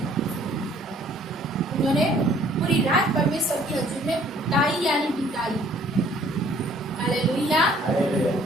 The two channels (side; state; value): both; normal; correlation 0.58